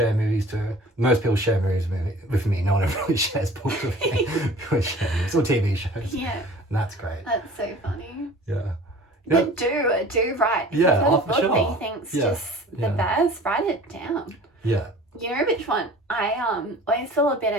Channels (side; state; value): both; normal; correlation 0.45